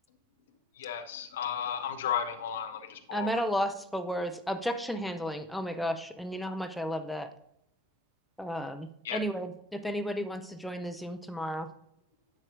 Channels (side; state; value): both; normal; correlation 0.52